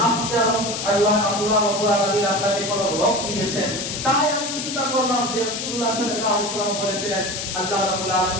আপনার আল্লাহ রাব্বুল আলামিন আপনাকে কোনো রোগ দিয়েছেন। তাই আমি চিন্তা করলাম যে রাসূলুল্লাহ সাল্লাল্লাহু আলাইহি ওয়াসাল্লাম বলেছিলেন, আল্লাহ রাব্বুল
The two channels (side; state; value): left; noise; hiss, 5 dB below the sound